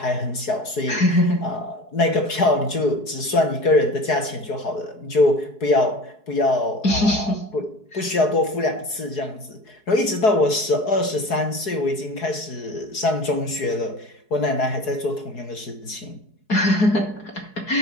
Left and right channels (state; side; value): late; right; 4.7 ms